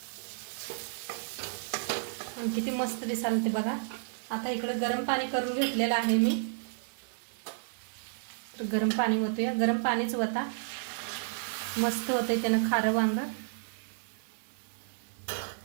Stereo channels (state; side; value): silent; left; 57 dB below the other